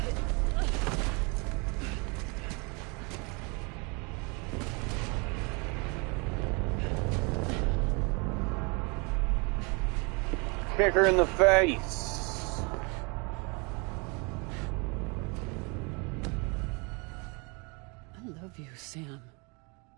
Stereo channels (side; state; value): left; quieter; 31.0 dB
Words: Kick her in the face. I love you, Sam.